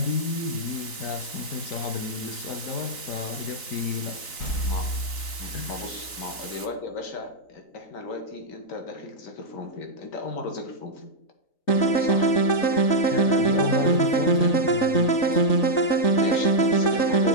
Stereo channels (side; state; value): right; late; 3.9 ms